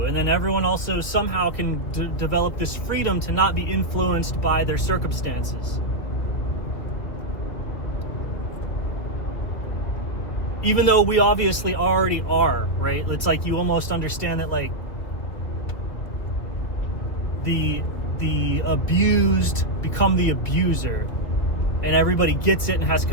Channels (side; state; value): right; late; 2.4 ms